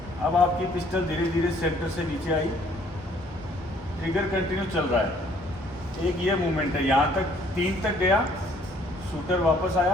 अब आपकी पिस्टल धीरे धीरे सेंटर से नीचे आई, ट्रिगर कंटिन्यू चल रहा है। एक ये मूवमेंट है, यहाँ तक 3 तक गया, शूटर वापस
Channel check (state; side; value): normal; both; correlation 0.61